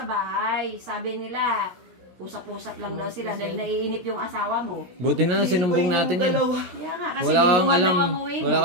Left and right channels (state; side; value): late; left; 16 ms